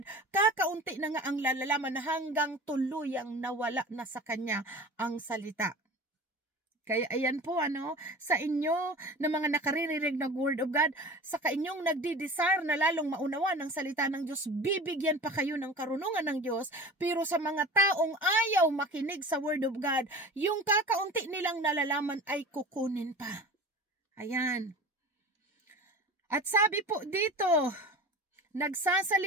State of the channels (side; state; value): both; normal; correlation 0.36